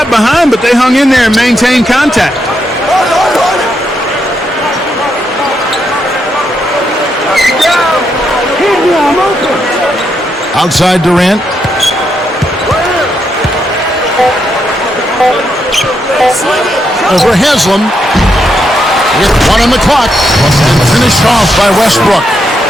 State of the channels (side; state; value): both; normal; correlation 0.80